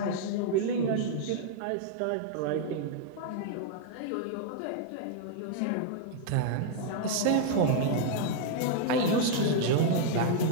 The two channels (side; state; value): both; different; correlation -0.01